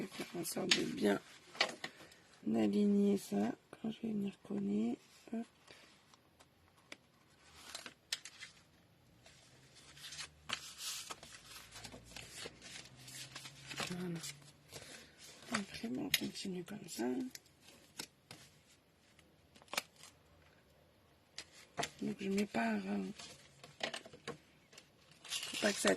vais faire en sorte de bien aligner ça quand je vais venir coller. Hop. Voilà. Après, on continue comme ça. Donc je mets pas, faut pas que ça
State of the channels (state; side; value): identical; both; correlation 1.00